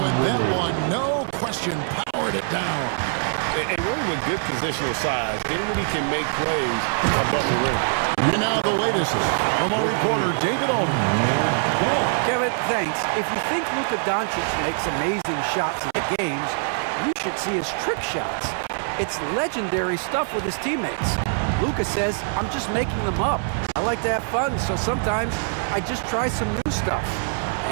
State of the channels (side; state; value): left; silent; 59 dB below the other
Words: that one, no question, powered it down. And really with good positional size, Dinwiddie can make plays above the rim. And now the latest from our reporter, David Aldridge. Kevin, thanks. If you think Luka Doncic makes amazing shots in the games, you should see his trick shots. It's legendary stuff with his teammates. Luka says, I'm just making them up. I like to have fun, so sometimes I just try some new stuff.